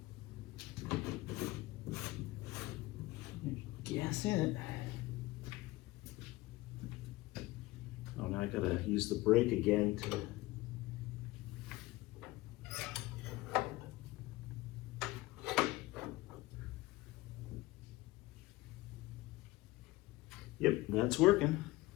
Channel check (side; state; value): right; quieter; 19.6 dB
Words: Gas in it. Oh, now I gotta use the brake again to. Yep, that's working.